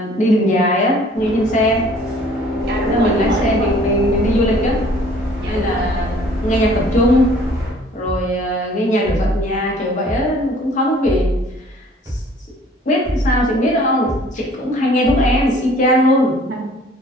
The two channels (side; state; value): both; normal; correlation 0.54